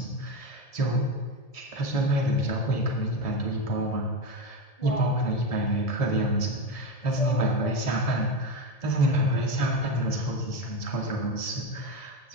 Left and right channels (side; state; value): right; late; 1.7 ms